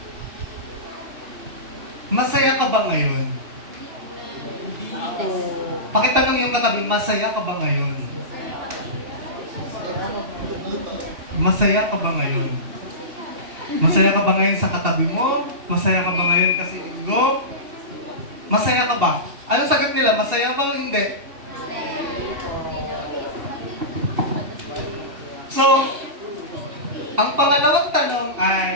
masaya ka ba ngayon? Hindi po. Pakitanong yung katabi, masaya ka ba ngayon? Masaya ka ba ngayon? Masaya ka ba ngayon sa katabi mo? Masaya ka ba ngayon kasi linggo? Masaya ka ba? Anong sagot nila? Masaya ba o hindi? So, ang pangalawang tanong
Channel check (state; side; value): late; left; 2.7 ms